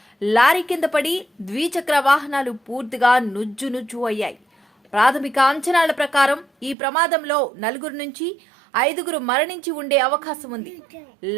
లారీ కింద పడి ద్విచక్ర వాహనాలు పూర్తిగా నుజ్జు అయ్యాయి. ప్రాథమిక అంచనాల ప్రకారం ఈ ప్రమాదంలో 4 నుంచి 5 మరణించి ఉండే అవకాశం ఉంది.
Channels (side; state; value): left; drops out; at 6.8 s